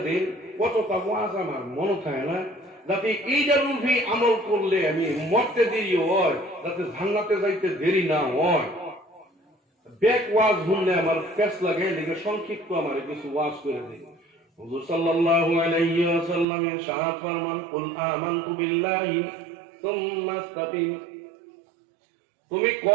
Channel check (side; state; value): left; drops out; at 16.4 s